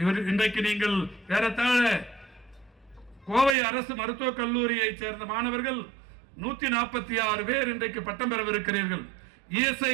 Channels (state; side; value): drops out; left; at 3.6 s